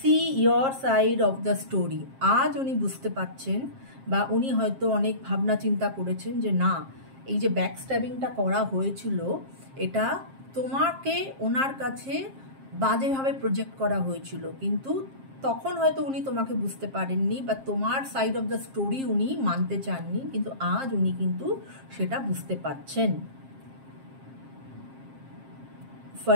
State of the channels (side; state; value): left; late; 7.5 ms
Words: your side of the story. আজ উনি বুঝতে পারছেন বা উনি হয়তো অনেক ভাবনা চিন্তা করেছেন যে না, এই যে ব্যাকস্ট্যাবিংটা করা হয়েছিল এটা তোমাকে ওনার কাছে বাজেভাবে প্রজেক্ট করা হয়েছিল, কিন্তু তখন হয়তো উনি তোমাকে বুঝতে পারেননি বা তোমার সাইড অফ দ্য স্টোরি উনি মানতে চাননি, কিন্তু আজ উনি কিন্তু সেটা বুঝতে পারছেন।